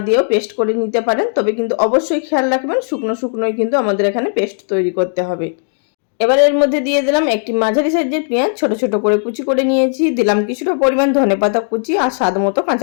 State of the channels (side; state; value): right; silent; 58 dB below the other